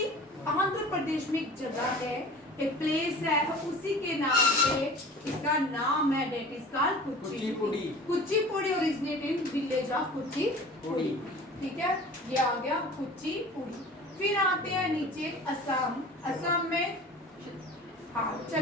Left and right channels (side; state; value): both; normal; correlation 0.41